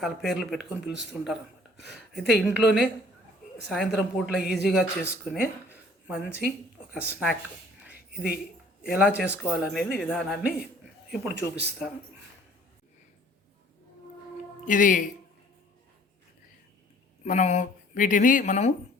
పేర్లు పెట్టుకొని పిలుస్తుంటారు అన్నమాట. అయితే ఇంట్లోనే సాయంత్రం పూట్ల ఈజీగా చేసుకునే మంచి ఒక స్నాక్. ఇది ఎలా చేసుకోవాలనేది విధానాన్ని ఇప్పుడు చూపిస్తాను. ఇది వీటిని మనము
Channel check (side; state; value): both; normal; correlation 0.54